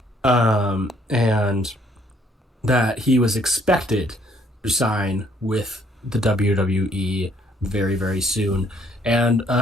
and that he was expected to sign with the WWE very, very soon. And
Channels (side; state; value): both; normal; correlation 0.65